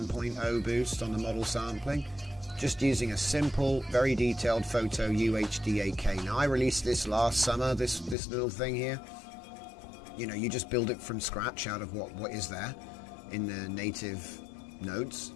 boost on the model sampling, just using a simple, very detailed photo UHD 8K. Now I released this last summer, this little thing here. You know, you just build it from scratch out of what is there in the native nodes,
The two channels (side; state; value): right; drops out; at 8.2 s